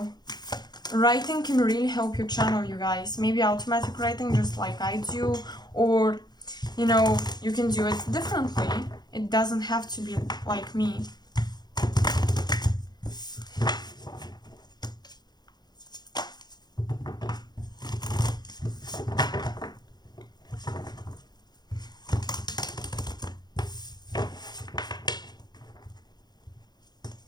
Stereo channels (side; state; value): right; late; 0.20 ms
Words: Writing can really help you channel, you guys. Maybe automatic writing just like I do, or you know, you can do it differently. It doesn't have to be like me.